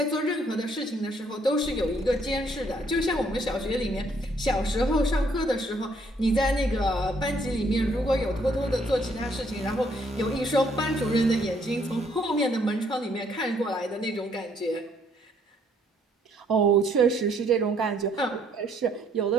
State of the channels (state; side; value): normal; both; correlation 0.67